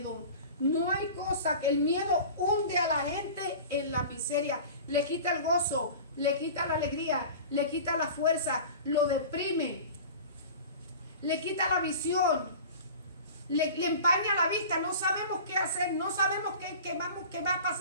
No hay cosa que el miedo hunde a la gente en la miseria. Le quita el gozo, le quita la alegría, le quita la fuerza, lo deprime, le quita la visión, le empaña la vista. No sabemos qué hacer, no sabemos qué va a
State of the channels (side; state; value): both; inverted; correlation -0.38